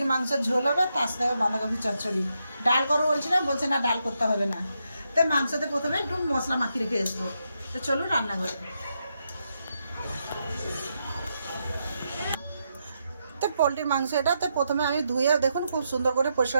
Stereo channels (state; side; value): inverted; both; correlation -0.82